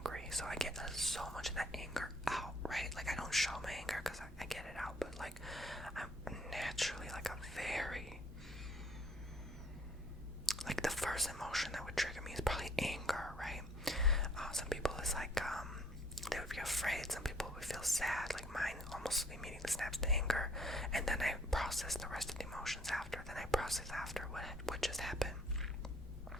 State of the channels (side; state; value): both; normal; correlation 0.60